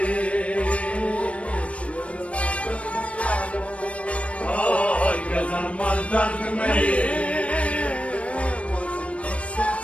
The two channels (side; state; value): right; late; 0.063 ms